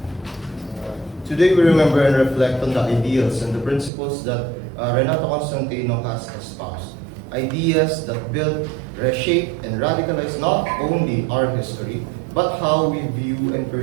Today we remember and reflect on the ideals and the principles that Renato Constantino has espoused. Ideas that build, reshape, and radicalize not only our history, but how we view and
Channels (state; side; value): drops out; left; at 3.9 s